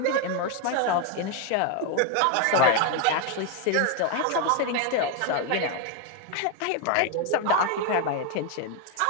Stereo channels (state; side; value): different; both; correlation 0.01